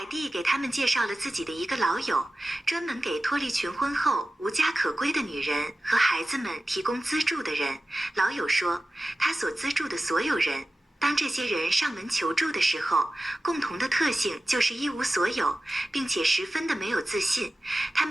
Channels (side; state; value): both; normal; correlation 0.95